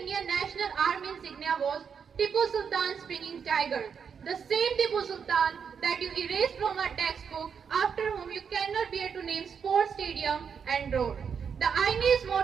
Indian National Army insignia was Tipu Sultan's springing tiger. The same Tipu Sultan that you erased from our textbook, after whom you cannot bear to name sports stadium and road. The INA's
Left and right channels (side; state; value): left; quieter; 6.7 dB